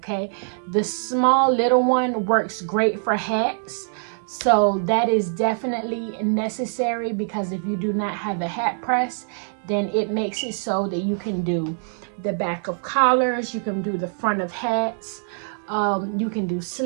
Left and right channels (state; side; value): silent; left; digital silence